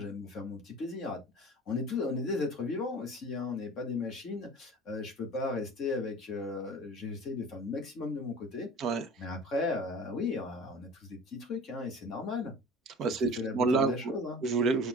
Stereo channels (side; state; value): both; normal; correlation 0.40